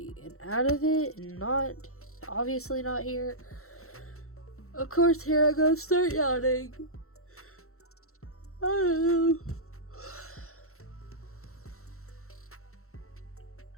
and out of it and not, obviously not here. Of course, here I go, start yawning. I don't know.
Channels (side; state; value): right; late; 0.63 ms